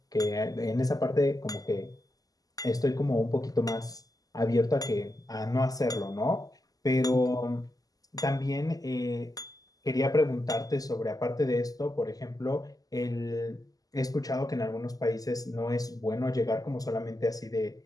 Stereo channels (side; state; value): right; late; 0.17 ms